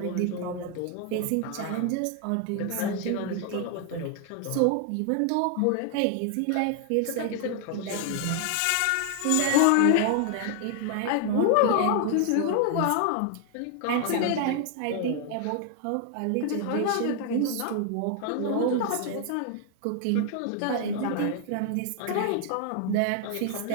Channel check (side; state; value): both; different; correlation 0.00